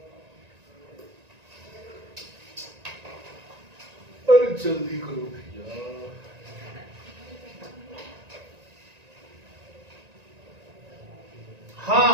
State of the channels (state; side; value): late; left; 1.9 ms